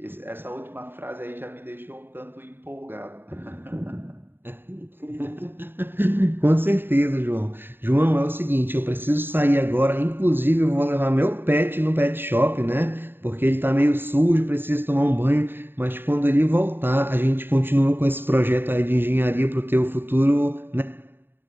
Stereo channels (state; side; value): late; left; 0.099 ms